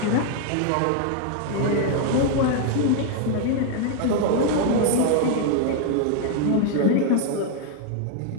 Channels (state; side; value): different; both; correlation 0.00